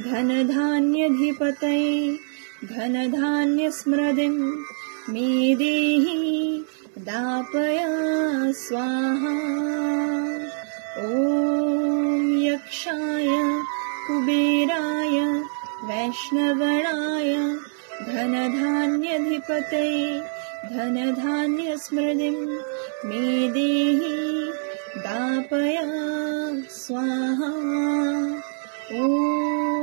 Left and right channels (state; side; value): silent; left; 62 dB below the other